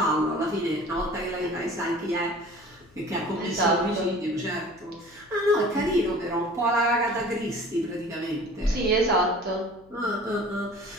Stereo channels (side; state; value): left; noise; hum, 28 dB below the sound